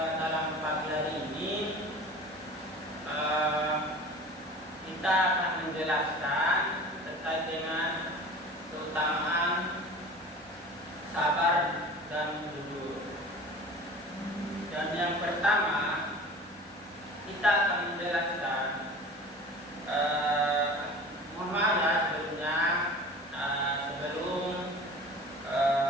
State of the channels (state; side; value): normal; both; correlation 0.40